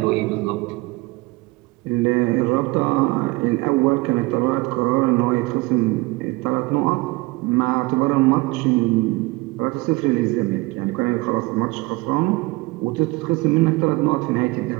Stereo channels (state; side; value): quieter; left; 23.0 dB